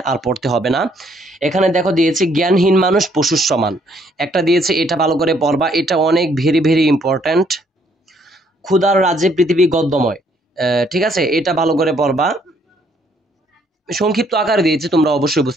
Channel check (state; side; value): normal; both; correlation 0.67